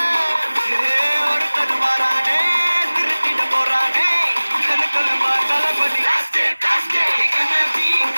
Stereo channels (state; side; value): inverted; both; correlation -1.00